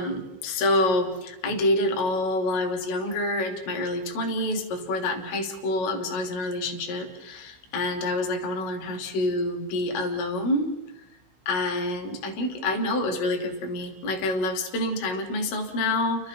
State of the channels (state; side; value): late; right; 16 ms